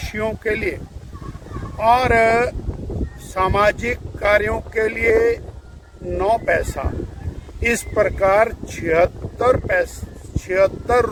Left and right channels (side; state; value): both; identical; correlation 1.00